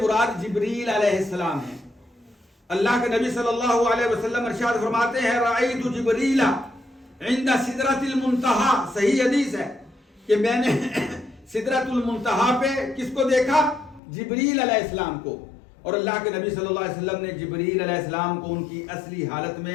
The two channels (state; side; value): drops out; right; at 14.0 s